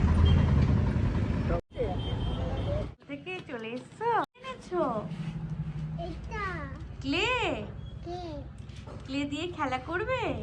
থেকে চলে এসছো, এনেছো ক্লে, ক্লে দিয়ে খেলা করবে।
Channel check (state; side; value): identical; both; correlation 1.00